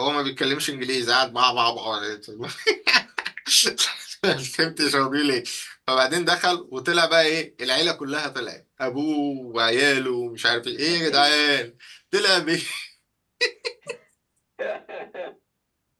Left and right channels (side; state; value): both; identical; correlation 1.00